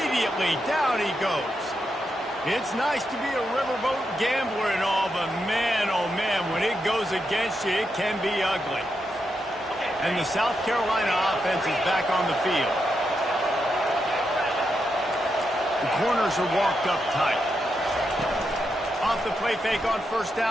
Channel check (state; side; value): normal; both; correlation 0.84